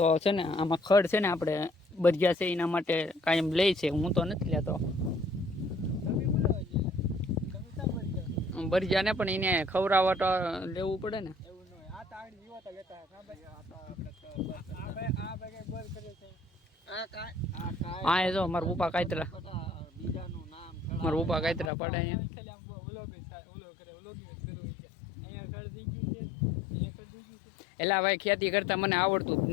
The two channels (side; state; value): right; drops out; at 21.7 s